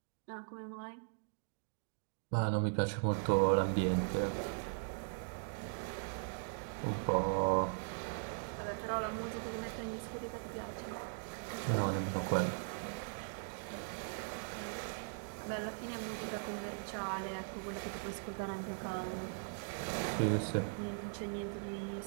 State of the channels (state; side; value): silent; left; digital silence